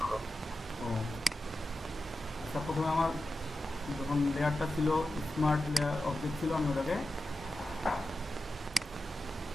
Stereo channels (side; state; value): both; normal; correlation 0.92